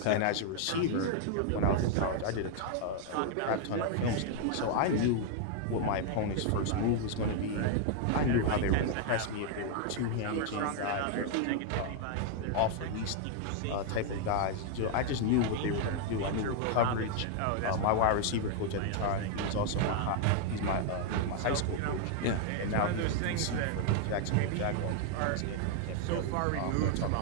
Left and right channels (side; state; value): both; different; correlation 0.00